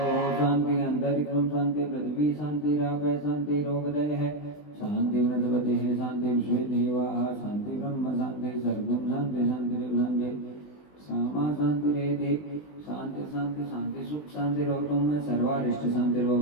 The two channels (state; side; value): late; right; 20 ms